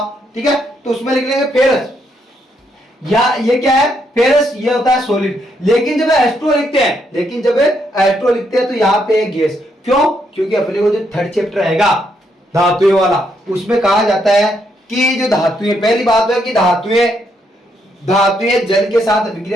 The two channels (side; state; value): both; normal; correlation 0.76